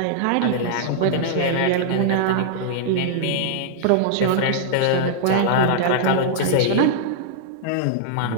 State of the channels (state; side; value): different; both; correlation -0.01